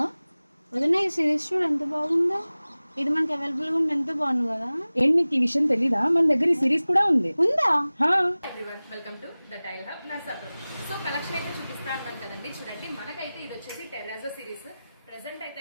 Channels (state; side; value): inverted; both; correlation -0.98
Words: వదిన ఈ సిరీస్ చూడు ఎంత బాగుందో, ఇది మనకి అవైలబుల్ గా ఉంటే ఎంత బాగుంది కదా. ఏంటి నీకు ఈ విషయం తెలీదా? మన దగ్గర ఈ సిరీస్ కూడా ఉంది. ఉందా? Everyone, welcome to the tile hub Narsapuram. So collection అయితే చూపిస్తా అంటాం కదండి. చూడండి, మనకైతే ఇది వచ్చేసి టెర్రాజో సిరీస్. ప్రెసెంట్